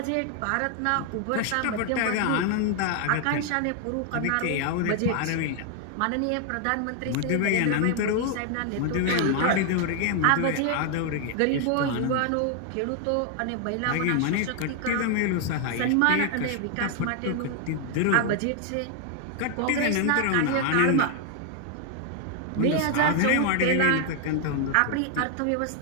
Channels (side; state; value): both; different; correlation 0.00